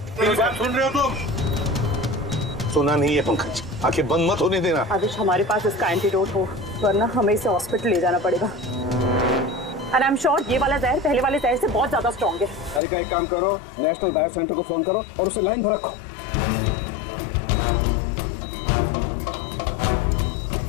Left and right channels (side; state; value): right; drops out; at 12.8 s